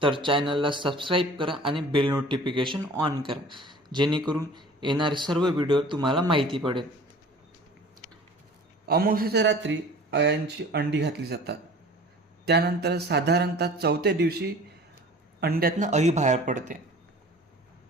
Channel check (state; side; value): normal; both; correlation 0.45